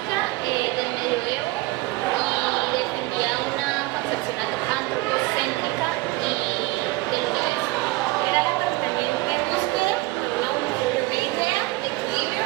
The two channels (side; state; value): left; quieter; 20.9 dB